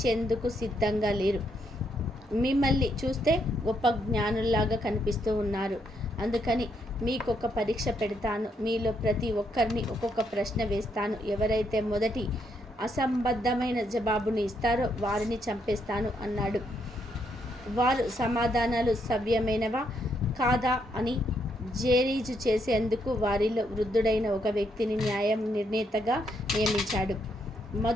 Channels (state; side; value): normal; both; correlation 0.76